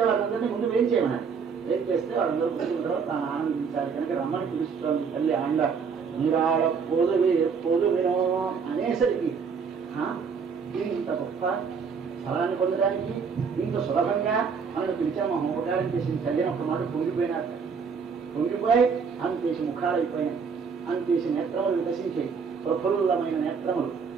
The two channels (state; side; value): quieter; left; 5.8 dB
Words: వాళ్ళందరినీ ముందు వేం చేయమన్నారు. వేం చేస్తే వాళ్ళందరూ కూర్చున్న తర్వాత తాను ఆనందించాలి కనుక రమ్మని పిలుస్తుంది తల్లి ఆండ. నీరాడ పొదువినో అనేసరికి ఇంత గొప్ప ఫలాన్ని పొందడానికి ఇంత సులభంగా మనకు పిలిచాము. ఉపకారం చేసింది చదివినప్పుడు మాట పొంగిపోయినారు. పొంగిపోయి అంతేసి ముఖాలు అయిపోయినాయి, అంతేసి నేత్రములు వికసించాయి. ప్రఫుల్లమైన నేత్రములు,